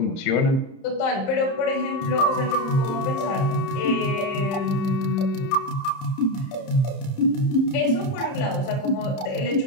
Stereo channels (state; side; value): late; right; 30 ms